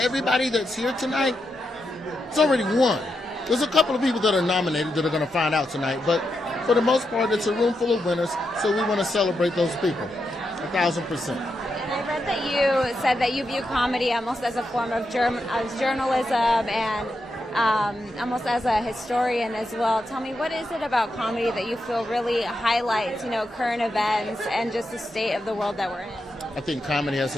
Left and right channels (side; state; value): both; normal; correlation 0.85